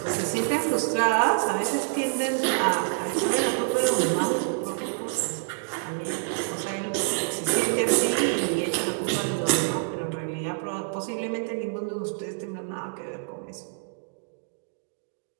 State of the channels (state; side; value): silent; left; digital silence